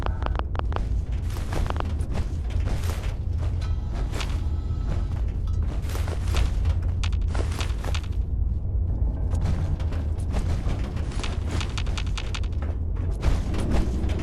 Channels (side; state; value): both; identical; correlation 1.00